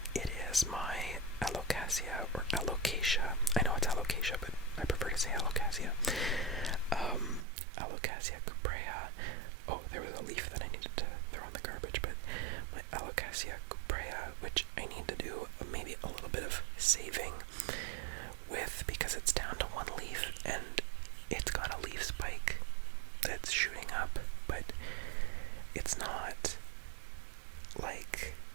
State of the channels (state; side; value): drops out; left; at 7.5 s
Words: it is my Alocasia, or Alocasia. I know it's Alocasia, but I prefer to say Alocasia. Alocasia cuprea. Oh, there was a leaf that I needed to throw in the garbage, but my Alocasia cuprea, which I need to do maybe a little bit of saving with, because it's down to one leaf, and it's got a leaf spike that's shooting up, but it's not like